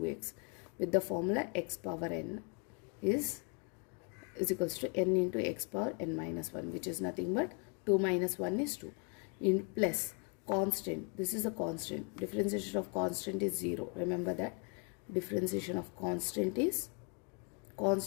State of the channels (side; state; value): right; quieter; 37.1 dB